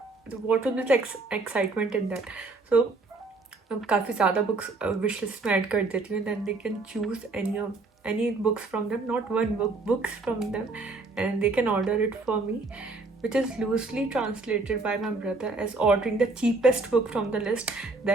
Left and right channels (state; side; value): quieter; left; 3.5 dB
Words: what will be the excitement in that. So अब काफ़ी ज़्यादा books wish list में add कर देती हूँ, then they can choose any books from them, not one book, books from them, and they can order it for me, which is loosely translated by my brother as ordering the cheapest book from the list.